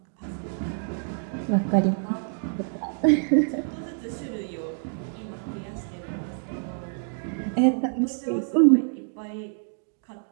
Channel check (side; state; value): left; silent; 60 dB below the other